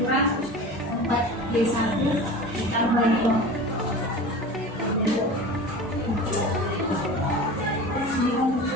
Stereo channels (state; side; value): normal; both; correlation 0.34